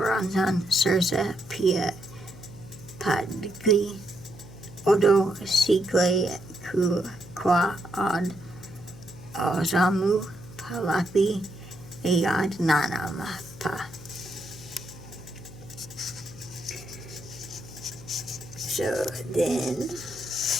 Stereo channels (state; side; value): noise; left; hum, 18 dB below the sound